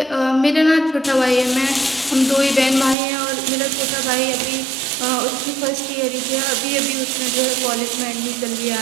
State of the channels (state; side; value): drops out; left; at 3.0 s